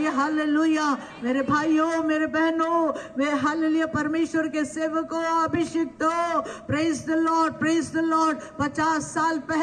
हालेलुया। मेरे भाइयों, मेरे बहनों, वे हालेलुया परमेश्वर के सेवकों, अभिषिक्तों, praise the Lord, praise the Lord. 50 साल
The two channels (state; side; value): identical; both; correlation 1.00